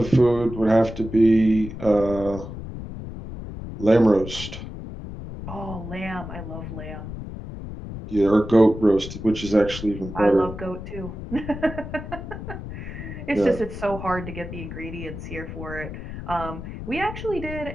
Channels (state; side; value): noise; left; rumble, 9 dB below the sound